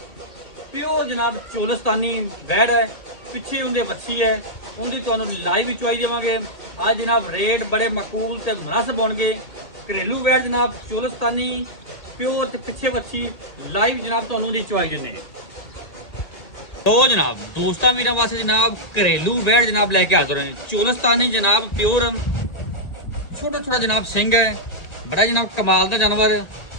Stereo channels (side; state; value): right; late; 1.9 ms